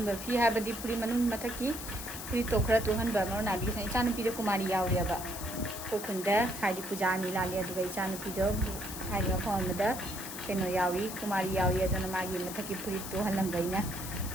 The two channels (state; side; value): noise; left; hiss, 9 dB below the sound